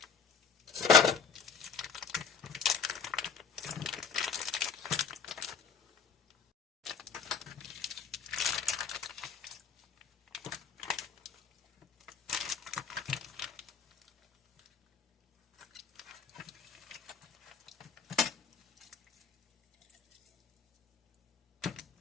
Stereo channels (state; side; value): quieter; right; 6.2 dB